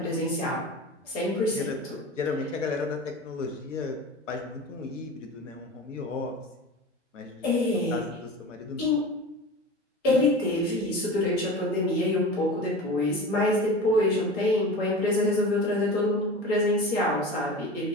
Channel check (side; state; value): both; normal; correlation 0.32